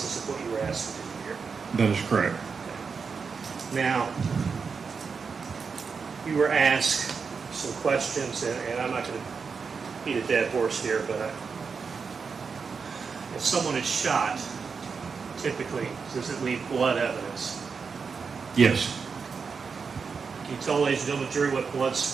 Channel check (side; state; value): left; quieter; 5.4 dB